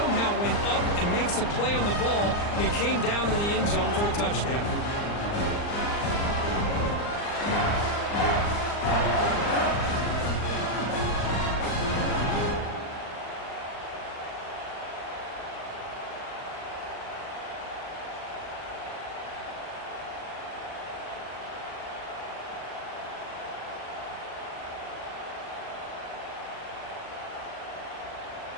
went up and makes a play on the ball and came down in the end zone for a touchdown.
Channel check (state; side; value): late; right; 39 ms